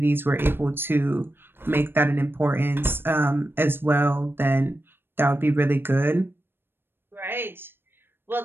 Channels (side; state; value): left; late; 0.10 ms